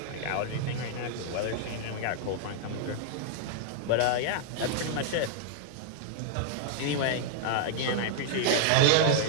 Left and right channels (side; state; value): both; different; correlation -0.01